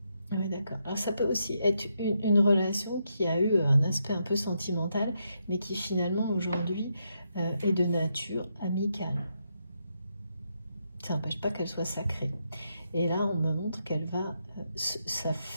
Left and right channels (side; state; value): both; inverted; correlation -0.81